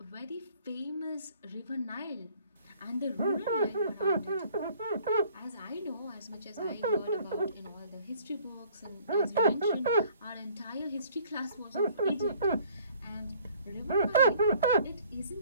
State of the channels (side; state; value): both; inverted; correlation -0.57